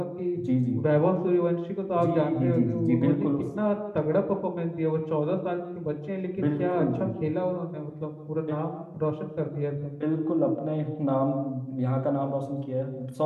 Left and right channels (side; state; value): both; identical; correlation 1.00